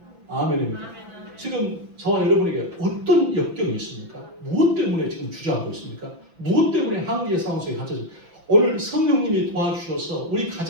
아멘입니다. 지금 저와 여러분에게 어떤 역경이 있습니까? 무엇 때문에 지금 주저하고 있습니까? 무엇 때문에 한계의 상황 속에 갇혀서 오늘 성령님이 도와주셔서 우리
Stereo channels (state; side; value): late; left; 6.0 ms